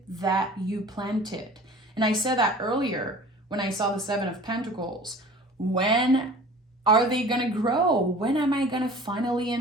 that you planted. And I said that earlier when I saw the Seven of Pentacles. When are they going to grow? When am I going to finally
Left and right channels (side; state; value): both; normal; correlation 0.43